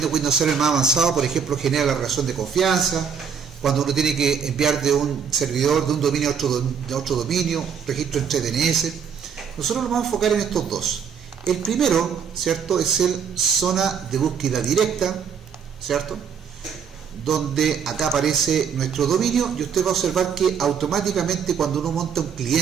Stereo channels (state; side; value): quieter; left; 6.9 dB